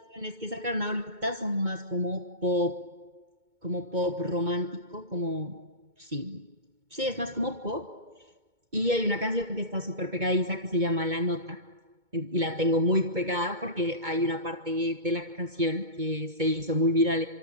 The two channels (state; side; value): late; left; 2.2 ms